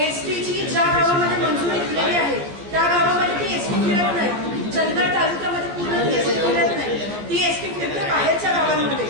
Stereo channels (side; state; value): left; late; 14 ms